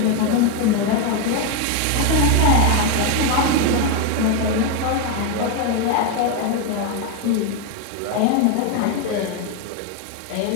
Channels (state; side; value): different; both; correlation 0.02